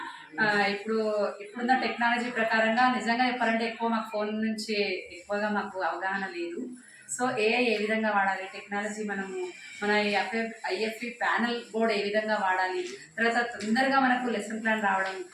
ఇప్పుడున్న టెక్నాలజీ ప్రకారంగా నిజంగా చెప్పాలంటే ఎక్కువ మాకు ఫోన్ నుంచి ఎక్కువగా మాకు అవగాహన లేదు. సో ఏఐ ఏ విధంగా వాడాలి, టెక్నాలజీ మన ఐఎఫ్ఈ ప్యానల్ బోర్డ్ ఏ విధంగా వాడాలి, తర్వాత తొందరగా మనకు లెసన్ ప్లాన్ రావడం.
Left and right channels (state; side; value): identical; both; correlation 1.00